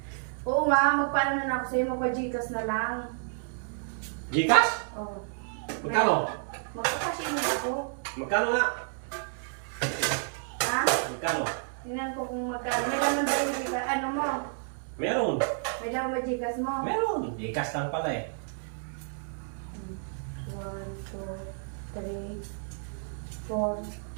Oo nga, magpaano na ako sa'yo. Magpa-Gcash na lang. Gcash? Oo. Magkano? Magpa-cash in ako. Magkano nga? Ha? Magkano? Tingnan ko kung magkano. May laman ba yung Gcash? Ano mo? Meron. May laman ba Gcash mo? Meron. Gcash lang pala eh. 1, 2, 3, 4,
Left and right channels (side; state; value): left; silent; digital silence